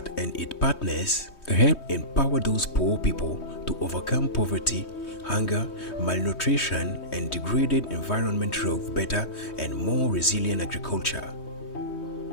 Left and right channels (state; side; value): late; right; 3.2 ms